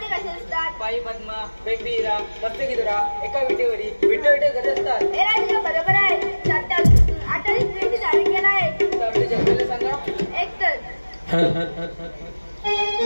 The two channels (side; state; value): both; inverted; correlation -1.00